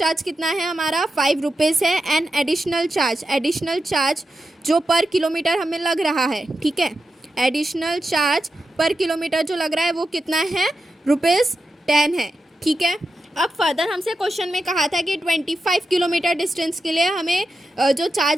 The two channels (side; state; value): both; normal; correlation 0.89